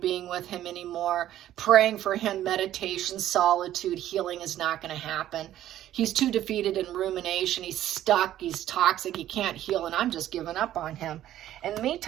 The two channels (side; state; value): left; quieter; 12.6 dB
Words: being with him anymore. Praying for him, meditation, solitude, healing is not going to happen. He's too defeated in rumination. He's stuck. He's toxic. He can't heal, and I'm just giving up on him. In the